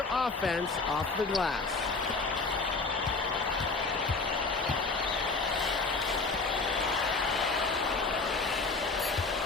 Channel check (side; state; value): right; quieter; 3.9 dB